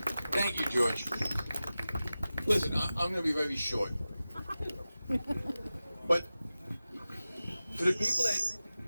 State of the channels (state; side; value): inverted; both; correlation -0.95